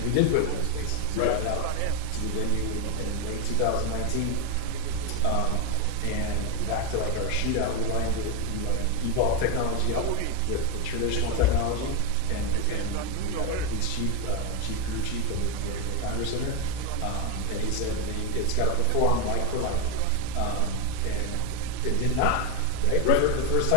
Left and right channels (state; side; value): different; both; correlation 0.01